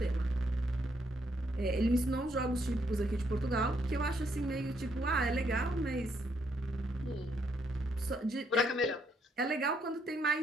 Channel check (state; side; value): normal; both; correlation 0.74